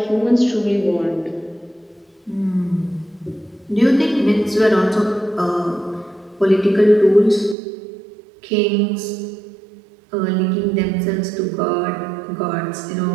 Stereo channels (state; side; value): drops out; left; at 7.6 s